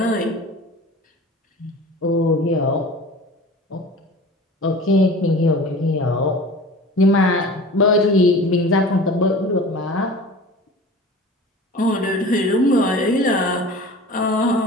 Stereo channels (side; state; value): both; normal; correlation 0.39